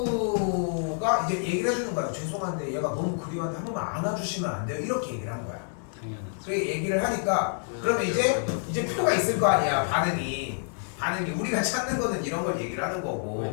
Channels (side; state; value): right; silent; 59 dB below the other